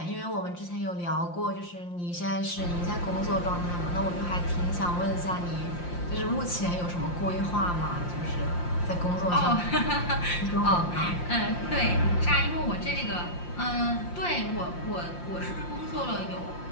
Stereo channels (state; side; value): late; right; 5.7 ms